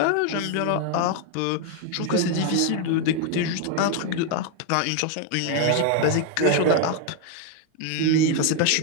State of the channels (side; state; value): both; different; correlation 0.01